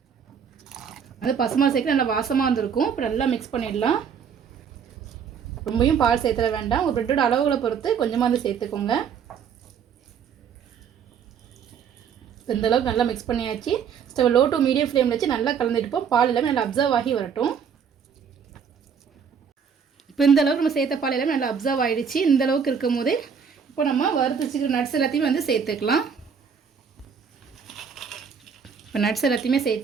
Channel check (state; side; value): quieter; left; 6.9 dB